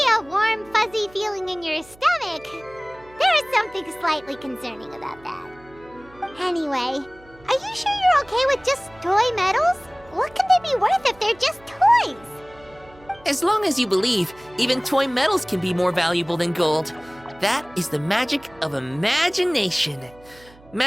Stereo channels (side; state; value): right; noise; hum, 25 dB below the sound